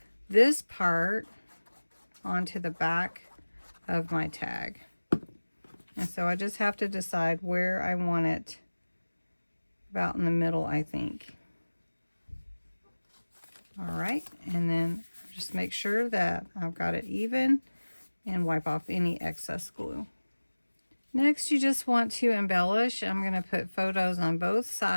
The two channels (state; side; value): inverted; both; correlation -1.00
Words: this part onto the back of my tag. And so I just have to decide where I want it, about in the middle, I think. All right, and then just make sure that I've got it even and wipe off any excess glue. Next, you just want to embellish. I'm going to put photos on both